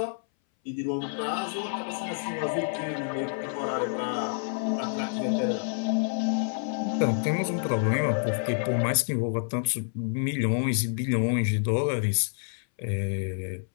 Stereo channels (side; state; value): right; silent; 59 dB below the other